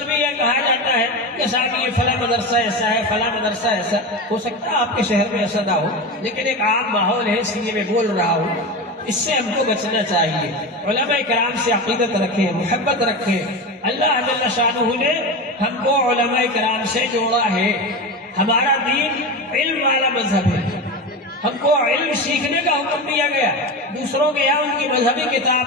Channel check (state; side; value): normal; both; correlation 0.22